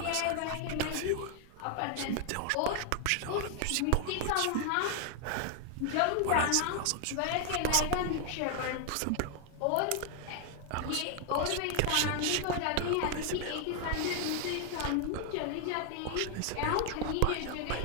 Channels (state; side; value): different; both; correlation 0.00